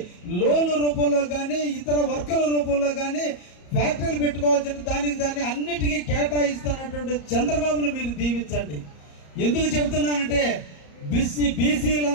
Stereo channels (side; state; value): right; late; 34 ms